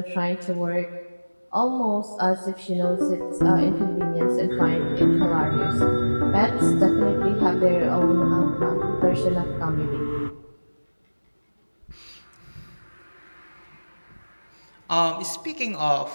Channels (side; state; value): both; inverted; correlation -1.00